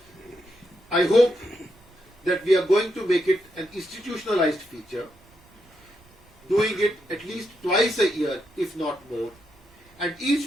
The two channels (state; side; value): noise; right; rumble, 29 dB below the sound